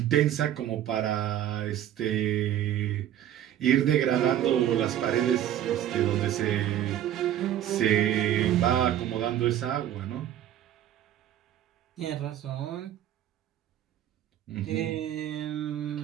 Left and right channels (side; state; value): left; quieter; 11.5 dB